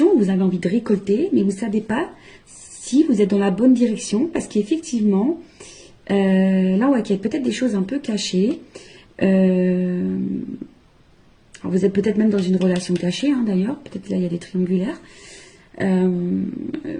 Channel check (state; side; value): identical; both; correlation 1.00